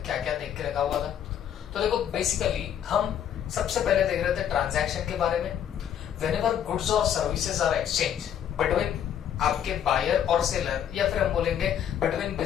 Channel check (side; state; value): right; quieter; 9.5 dB